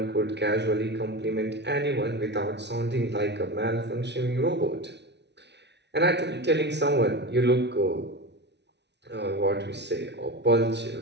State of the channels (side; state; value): left; late; 0.50 ms